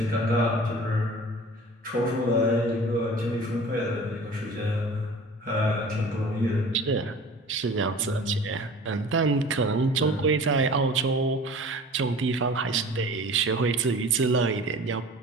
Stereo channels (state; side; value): normal; both; correlation 0.42